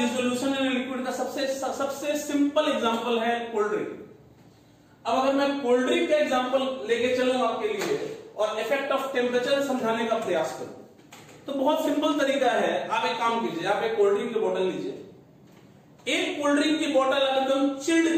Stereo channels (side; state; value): both; identical; correlation 1.00